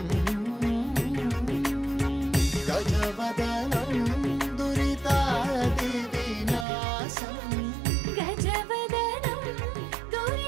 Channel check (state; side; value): drops out; left; at 6.7 s